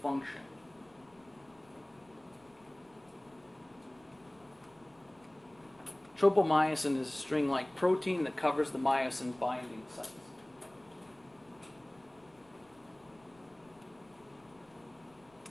Tropomyosin is a string-like protein that covers the myosin binding sites.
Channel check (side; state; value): left; noise; rumble, 30 dB below the sound